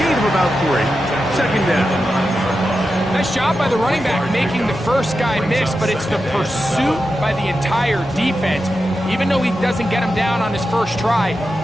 of about 3. Second down. Nice job by the running back making the first guy miss, but it's the pursuit by the entire defense. Even though he doesn't get him down on his first try,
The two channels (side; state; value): both; normal; correlation 0.90